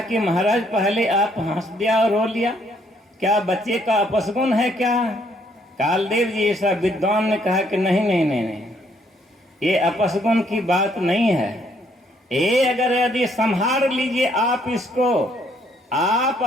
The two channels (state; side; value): normal; both; correlation 0.68